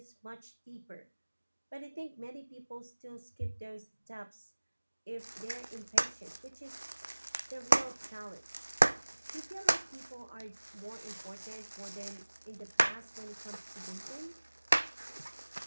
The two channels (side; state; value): both; inverted; correlation -1.00